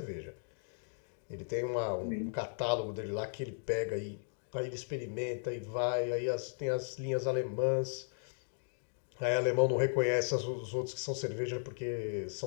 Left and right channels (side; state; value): right; silent; digital silence